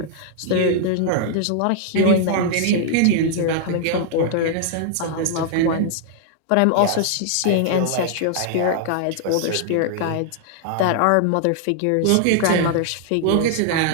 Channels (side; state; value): both; different; correlation -0.01